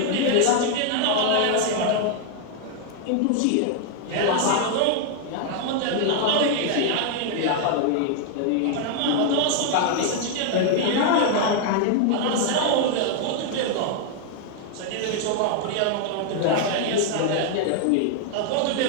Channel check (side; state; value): both; different; correlation 0.00